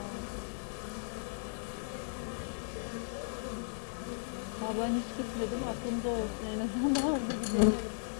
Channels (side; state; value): right; silent; digital silence